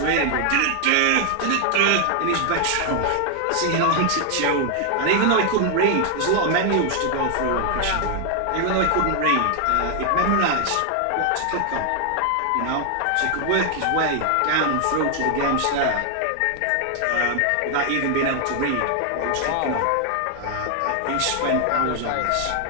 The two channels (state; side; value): different; both; correlation 0.00